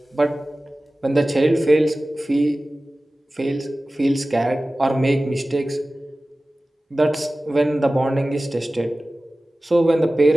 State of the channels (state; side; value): normal; both; correlation 0.97